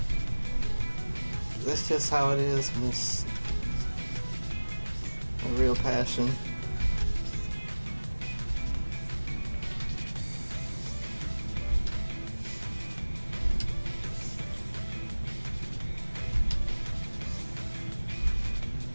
That's just how it is, and it's a real passion.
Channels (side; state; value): both; inverted; correlation -1.00